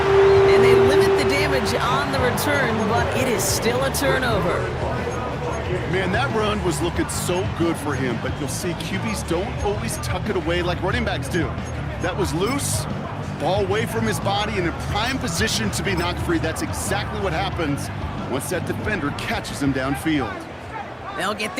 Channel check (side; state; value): both; identical; correlation 1.00